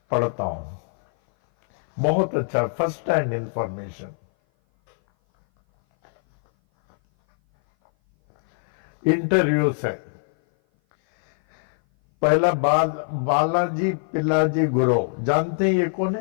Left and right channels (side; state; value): right; silent; 58 dB below the other